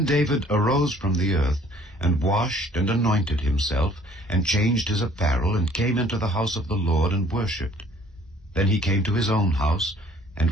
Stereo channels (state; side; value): normal; both; correlation 0.57